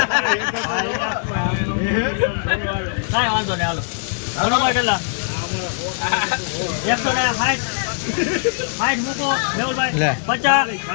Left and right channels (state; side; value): silent; right; 65 dB below the other